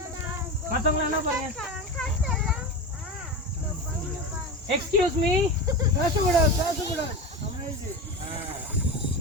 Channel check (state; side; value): normal; both; correlation 0.23